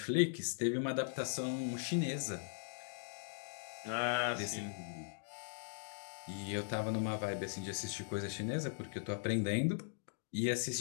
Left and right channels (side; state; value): right; silent; digital silence